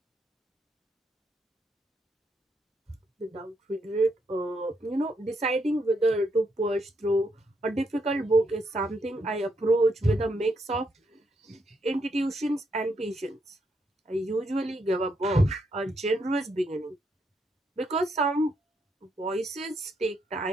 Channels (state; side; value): normal; both; correlation 0.78